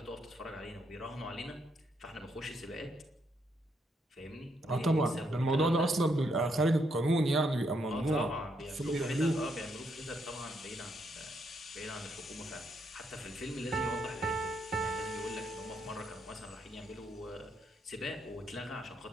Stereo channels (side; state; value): both; normal; correlation 0.76